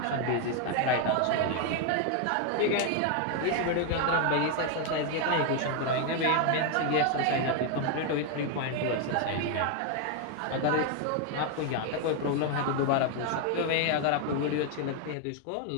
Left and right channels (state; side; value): different; both; correlation 0.01